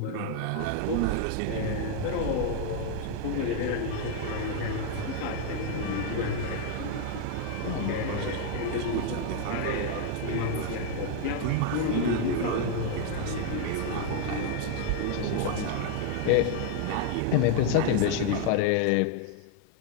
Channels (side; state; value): both; different; correlation 0.01